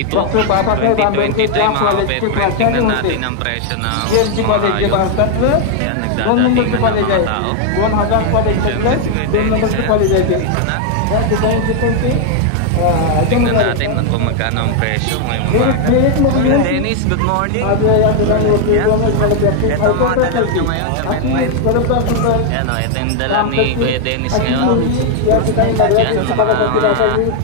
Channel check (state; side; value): different; both; correlation 0.00